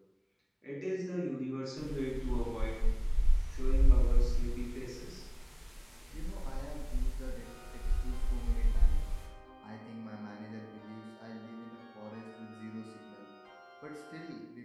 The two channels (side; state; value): both; identical; correlation 1.00